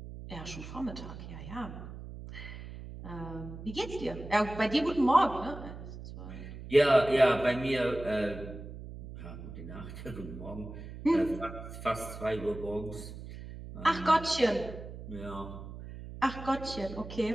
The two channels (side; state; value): right; noise; hum, 12 dB below the sound